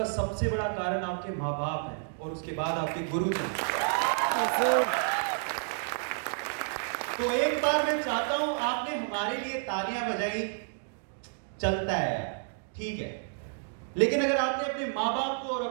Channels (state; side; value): silent; left; 58 dB below the other